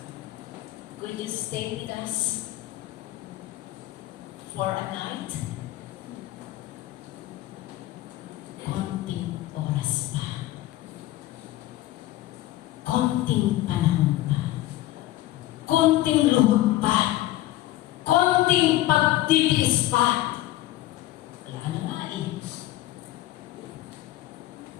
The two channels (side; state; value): right; quieter; 15.8 dB